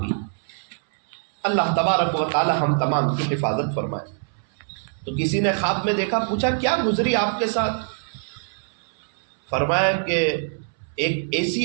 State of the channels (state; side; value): silent; left; 63 dB below the other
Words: اللہ تبارک و تعالی ہم تمام کی حفاظت فرمائے۔ تو کسی نے خواب میں دیکھا، پوچھا کیا گزری آپ کے ساتھ؟ فرمایا کہ ایک